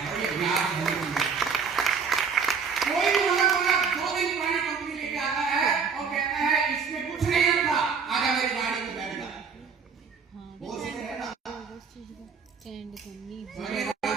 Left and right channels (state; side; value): quieter; left; 5.9 dB